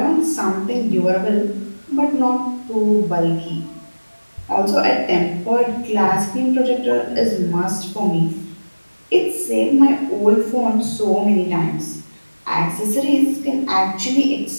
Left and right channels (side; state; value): both; inverted; correlation -1.00